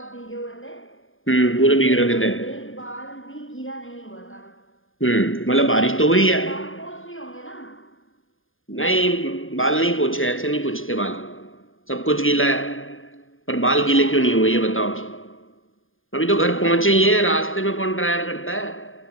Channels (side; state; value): right; late; 0.59 ms